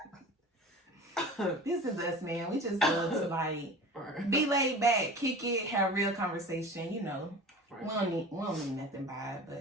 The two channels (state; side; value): normal; both; correlation 0.37